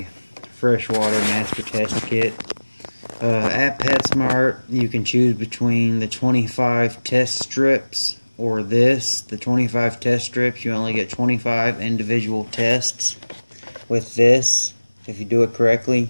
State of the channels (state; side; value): inverted; both; correlation -1.00